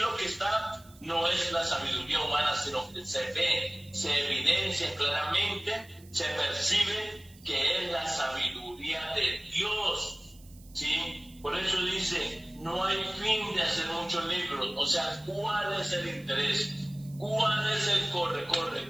que está no es la sabiduría humana, sino que se ve, se evidencia claramente, se percibe que es la sabiduría de Dios, ¿sí? Por eso dice, no hay fin de hacer muchos libros. O sea, ¿cuál es el interés? ¿Cuál es el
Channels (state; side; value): noise; right; hiss, 25 dB below the sound